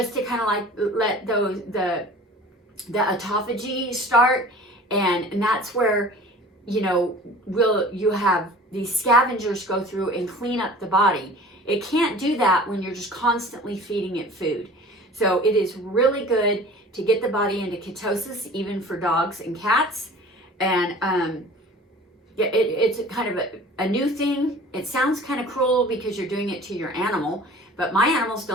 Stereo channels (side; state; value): both; normal; correlation 0.43